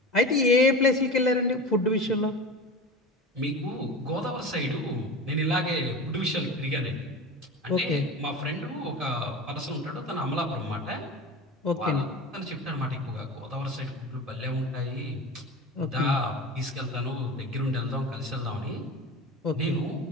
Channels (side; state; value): both; normal; correlation 0.30